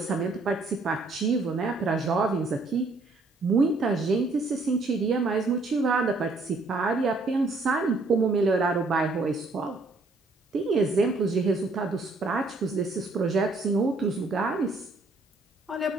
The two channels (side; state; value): left; quieter; 3.3 dB